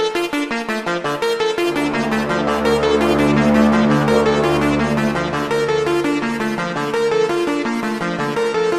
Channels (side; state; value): both; identical; correlation 1.00